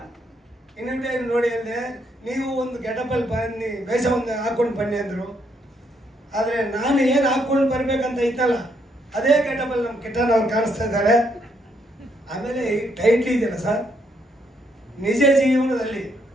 ಇನ್ವಿಟೇಷನ್ ನೋಡಿ ಅಂದೆ, ನೀವು ಒಂದು ಗೆಟಪ್ಪಲ್ಲಿ ಬನ್ನಿ, ವೇಷ ಒಂದು ಹಾಕ್ಕೊಂಡು ಬನ್ನಿ ಅಂದರು. ಆದರೆ ನಾನು ಏನು ಹಾಕ್ಕೊಂಡು ಬರ್ಬೇಕಂತ ಇತ್ತಲ್ಲ, ಅದೇ ಗೆಟಪ್ಪಲ್ಲಿ ನಮ್ಮ ಕಿಟ್ಟಣ್ಣ ಅವ್ರು ಕಾಣಿಸ್ತಾ ಇದ್ದಾರೆ. ಆಮೇಲೆ ಈ ಟೈಟ್ಲ್ ಇದೆಯಲ್ಲ ಸರ್, ನಿಜ ಜೀವನದಲ್ಲಿ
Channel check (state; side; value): normal; both; correlation 0.74